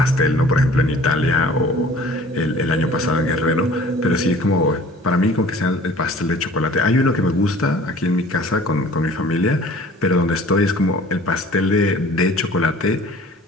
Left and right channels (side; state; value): both; normal; correlation 0.48